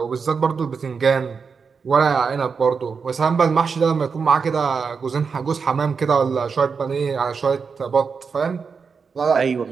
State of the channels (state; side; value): quieter; left; 5.5 dB